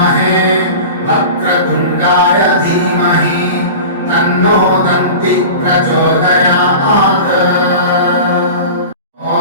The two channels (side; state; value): both; inverted; correlation -0.34